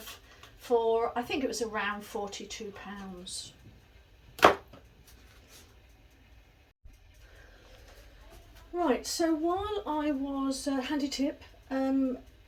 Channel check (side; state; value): both; identical; correlation 1.00